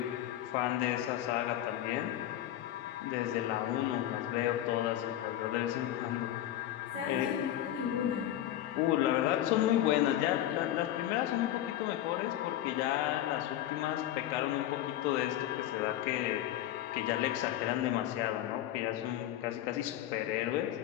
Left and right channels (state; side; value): quieter; right; 12.6 dB